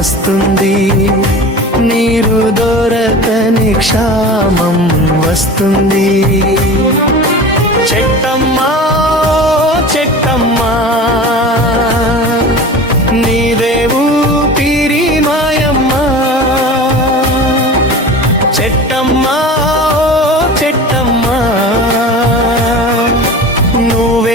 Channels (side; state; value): both; normal; correlation 0.35